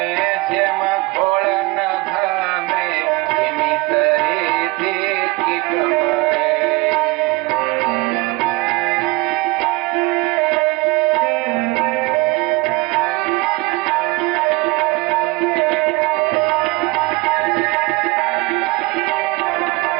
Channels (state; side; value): quieter; left; 22.9 dB